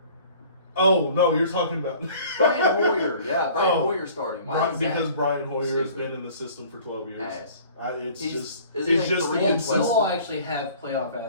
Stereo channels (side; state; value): both; inverted; correlation -0.49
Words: Oh no, you're talking about Brian Hoyer. Yeah, Brian Oh. Hoyer starting. Why is because Zap Brian Hoyer has stupid? been in the system for 12 years. ass? It's He's- just is he it's like just the 3 and We'll 12? all actually have playoff